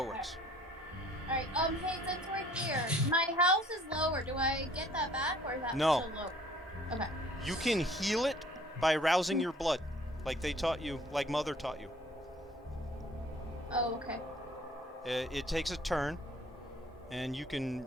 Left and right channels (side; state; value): both; normal; correlation 0.55